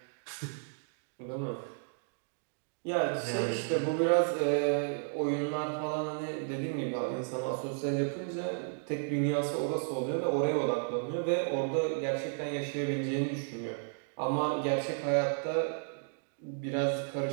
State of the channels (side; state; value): left; silent; digital silence